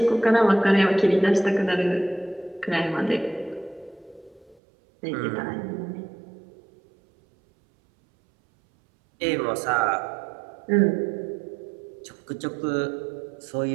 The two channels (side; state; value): left; drops out; at 4.5 s